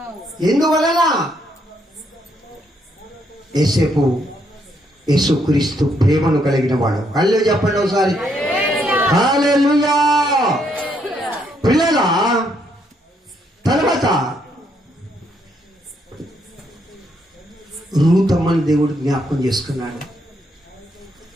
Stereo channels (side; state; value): both; normal; correlation 0.74